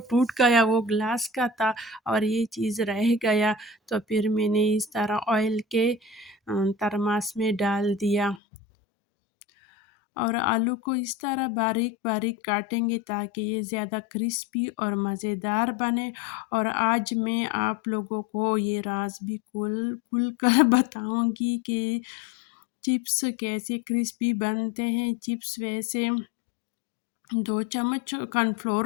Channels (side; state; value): right; drops out; at 8.4 s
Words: गया, वो ग्लास का था और ये चीज़ रह गया। तो फिर मैंने इस तरह ऑयल के थर्मास में डाल दिया। और आलू को इस तरह बारीक बारीक काटेंगे ताकि ये ज़्यादा क्रिस्पी और मज़ेदार बने। और आज मैं आप लोगों को ये राज भी खुल खुल कर बताऊंगी कि चिप्स कैसे क्रिस्पी बनते हैं। चिप्स वैसे 2 चम्मच